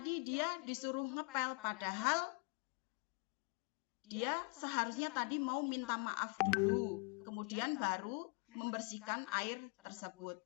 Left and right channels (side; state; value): right; quieter; 35.6 dB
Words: dia disuruh ngepel, padahal dia seharusnya tadi mau minta maaf dulu, kemudian baru membersihkan air tersebut.